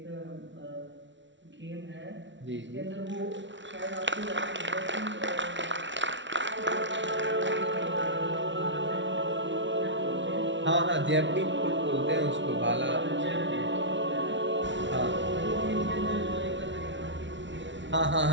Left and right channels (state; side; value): late; left; 0.54 ms